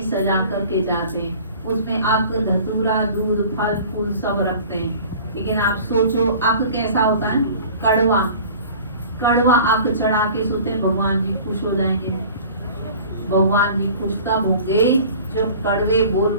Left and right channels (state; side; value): inverted; both; correlation -0.44